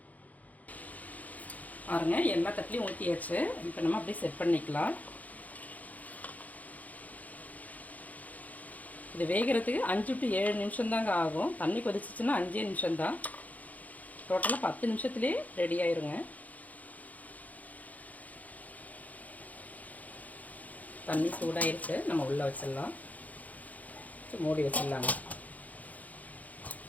பாருங்க, எல்லா தட்டிலையும் ஊற்றியாச்சு. இப்போ நம்ம அப்படியே செட் பண்ணிக்கலாம். இது வேகிறதுக்கு 5 to 7 நிமிஷம் தாங்க ஆகும். தண்ணி கொதிச்சிச்சுன்னா 5 நிமிஷம்தான். டோட்டலாக 10 நிமிஷத்துலேயே ரெடி ஆயிருங்க. தண்ணி சூடாயிருச்சு, நம்ம உள்ளே வச்சிடலாம். மூடி வச்சிடலாங்க.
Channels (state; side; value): late; right; 0.077 ms